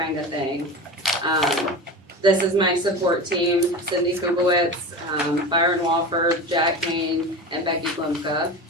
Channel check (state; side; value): normal; both; correlation 0.29